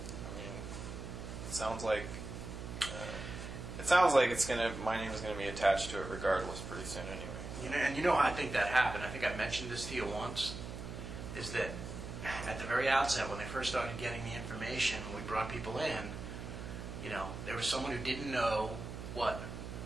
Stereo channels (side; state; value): right; noise; hum, 8 dB below the sound